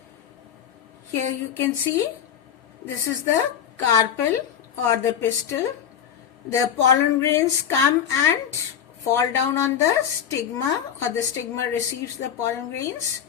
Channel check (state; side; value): quieter; right; 8.7 dB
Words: Here you can see this is the carpel or the pistil. The pollen grains come and fall down on the stigma, or the stigma receives the pollen grains.